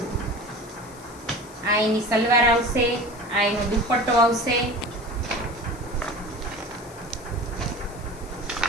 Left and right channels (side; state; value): left; noise; hiss, 21 dB below the sound